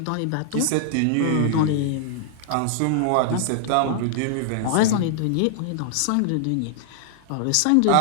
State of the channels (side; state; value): both; different; correlation -0.01